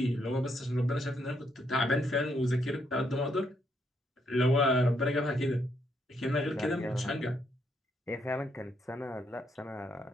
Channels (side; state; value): both; normal; correlation 0.75